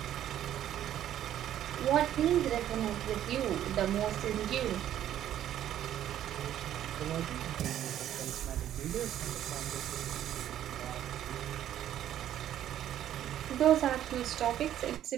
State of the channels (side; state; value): left; quieter; 11.4 dB